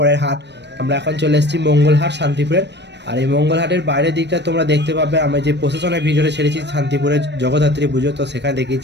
হাট। আমরা এখন চলে এসেছি মঙ্গলহাট শান্তিপুরের। আর এই মঙ্গলহাটের বাইরের দিকটা তোমরা দেখতে পাবে, আমি যে প্রশাসনের ভিডিওটা ছেড়েছি শান্তিপুরের জগদ্ধাত্রী পুজো, তো সেখানে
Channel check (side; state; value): left; late; 0.50 ms